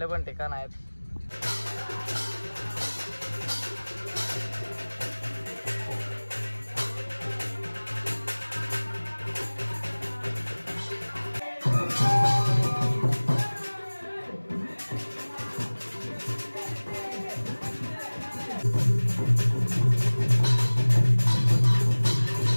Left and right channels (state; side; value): inverted; both; correlation -1.00